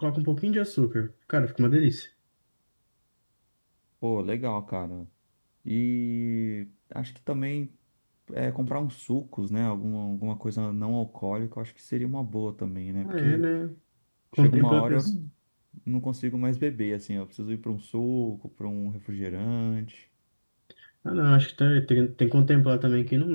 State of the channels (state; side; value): inverted; both; correlation -1.00